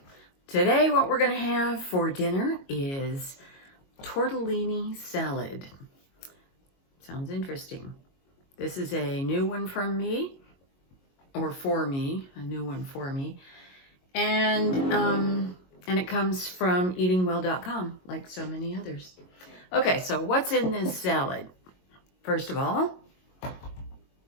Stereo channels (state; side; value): late; right; 22 ms